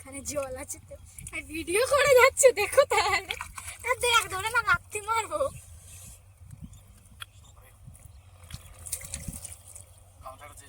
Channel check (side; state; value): both; identical; correlation 1.00